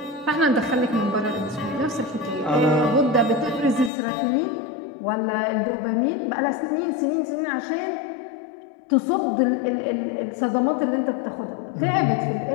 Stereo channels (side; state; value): right; drops out; at 3.9 s